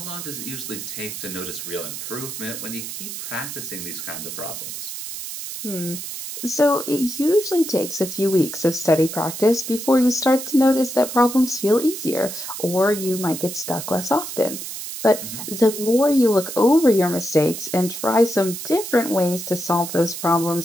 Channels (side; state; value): right; noise; hiss, 8 dB below the sound